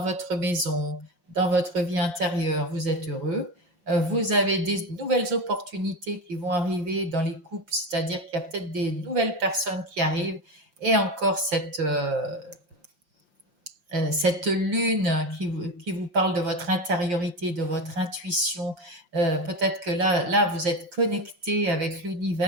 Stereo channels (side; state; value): left; late; 5.7 ms